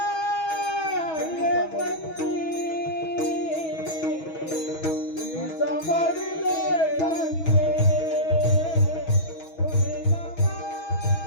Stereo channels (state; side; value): late; right; 6.2 ms